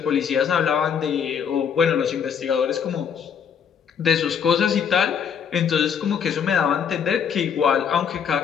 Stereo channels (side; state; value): right; quieter; 7.3 dB